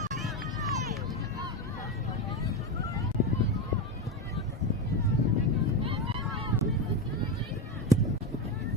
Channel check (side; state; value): both; normal; correlation 0.14